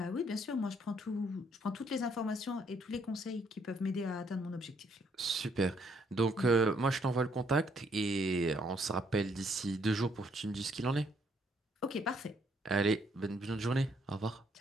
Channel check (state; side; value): normal; both; correlation 0.69